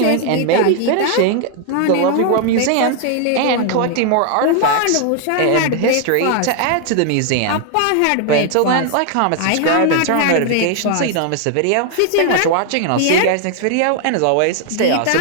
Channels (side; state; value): both; different; correlation 0.00